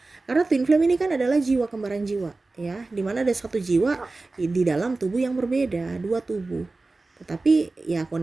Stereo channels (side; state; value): left; quieter; 3.4 dB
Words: Karena twin flame ini kan adalah jiwa kembaran jiwa ya, dimana ada satu jiwa di dalam tubuh yang berbeda, dua tubuh, tetapi ya